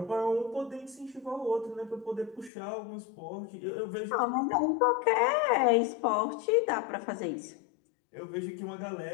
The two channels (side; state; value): right; drops out; at 2.5 s